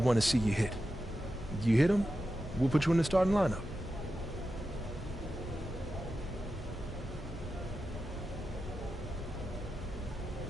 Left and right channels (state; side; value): normal; both; correlation 0.91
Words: to see you hit. You hit them, we'll put you in the starting lineup.